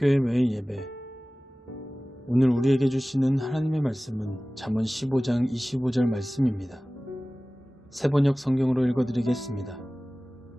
매일 예배. 오늘 우리에게 주시는 하나님의 말씀은 잠언 15장 25절 말씀입니다. 새번역 성경으로 읽어드리겠습니다.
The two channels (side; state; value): both; normal; correlation 0.97